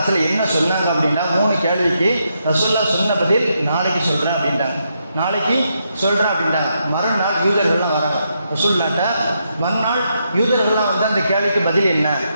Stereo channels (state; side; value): inverted; both; correlation -0.80